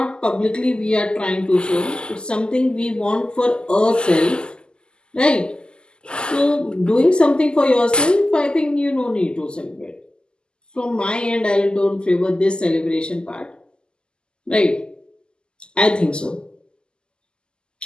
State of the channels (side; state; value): right; late; 0.048 ms